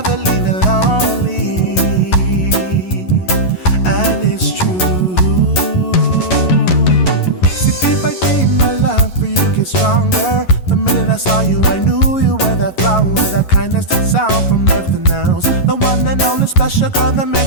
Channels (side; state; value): right; late; 11 ms